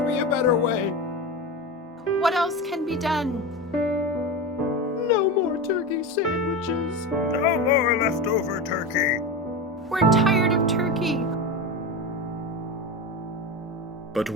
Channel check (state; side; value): normal; both; correlation 0.22